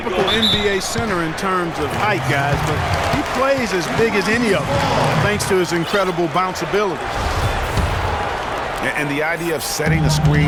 NBA center in terms of height, guys, but he plays as big as any of them, thanks to his incredible bounce ability. And the idea of setting a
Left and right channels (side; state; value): both; identical; correlation 1.00